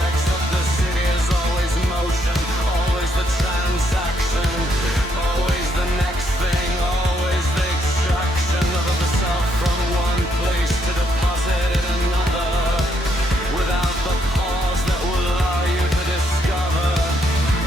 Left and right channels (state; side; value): normal; both; correlation 0.74